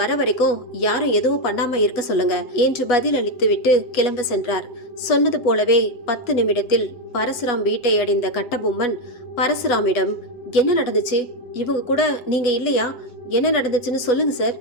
வரைக்கும் யாரும் எதுவும் பண்ணாம இருக்க சொல்லுங்க என்று பதில் அளித்துவிட்டு கிளம்ப சென்றார். சொன்னது போலவே 10 நிமிடத்தில் பரசுராம் வீட்டை அடைந்த கட்டபொம்மன் பரசுராமிடம், என்ன நடந்துச்சு? இவங்க கூட நீங்க இல்லையா? என்ன நடந்துச்சுன்னு சொல்லுங்க சார்.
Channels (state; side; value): late; right; 8.2 ms